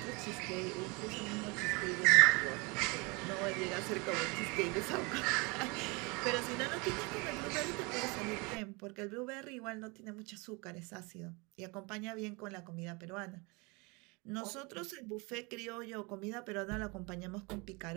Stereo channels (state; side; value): quieter; left; 28.0 dB